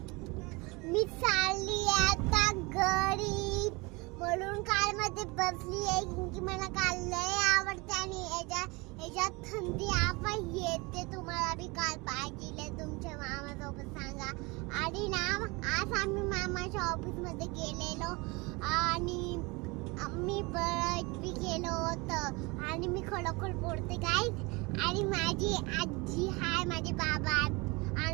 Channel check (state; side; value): quieter; left; 25.9 dB